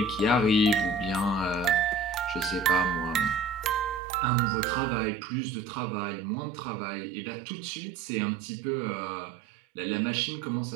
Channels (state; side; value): drops out; left; at 4.0 s